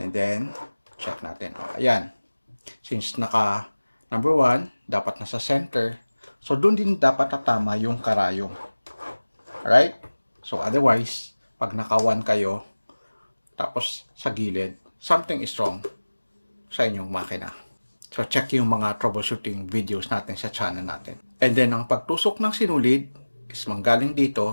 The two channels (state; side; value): inverted; both; correlation -1.00